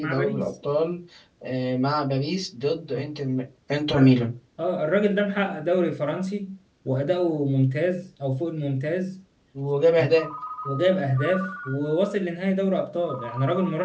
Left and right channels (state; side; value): identical; both; correlation 1.00